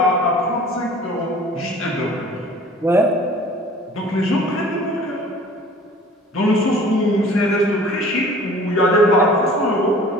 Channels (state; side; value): normal; both; correlation 0.48